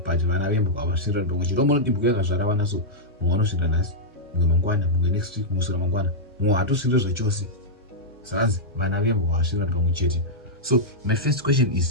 vana vembwa avasvira ndongo chirombo dibhuko yakazvara vana so mumwe anosvira nhasi mumwe mangwana mumwe next week musura mangwana mumwe hatosvira zvachose zvanzi vana vembwa avasvira ndongo chete. So my first question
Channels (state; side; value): normal; both; correlation -0.08